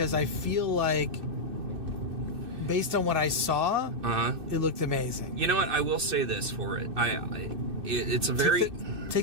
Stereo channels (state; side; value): late; left; 2.6 ms